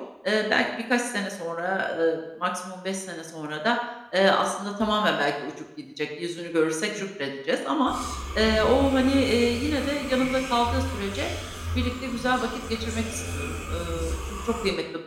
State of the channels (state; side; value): identical; both; correlation 1.00